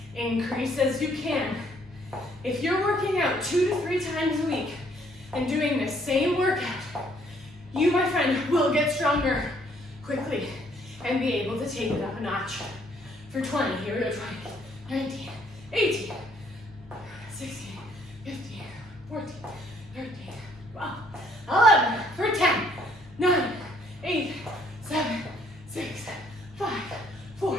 increase as you can. If you're working out 2 to 3 times a week and doing the same workout, you, my friend, will get stronger quickly and be able to take it up a notch. For 20, here we go, 20, 19, 18, 16, 15, 14, 13, 12, 11, for 10, 9, 8, 7, 6, 5,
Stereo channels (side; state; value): both; normal; correlation 0.65